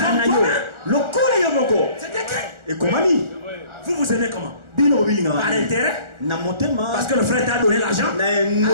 C'est écrit. Vous aimez comment? Par intérêt? Parce que le frère t'a donné l'argent. J'aime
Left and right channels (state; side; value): late; left; 1.4 ms